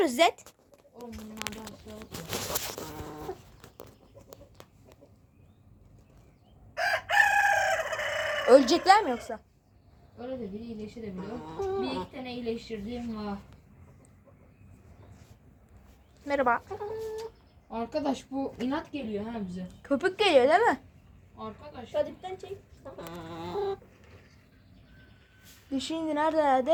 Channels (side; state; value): both; identical; correlation 1.00